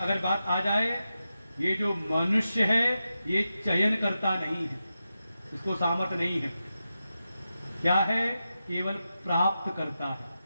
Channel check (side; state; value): both; inverted; correlation -0.90